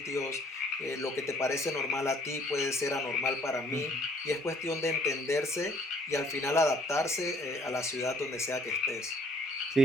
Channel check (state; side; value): normal; both; correlation 0.60